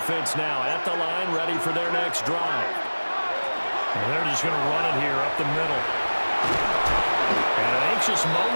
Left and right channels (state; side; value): inverted; both; correlation -1.00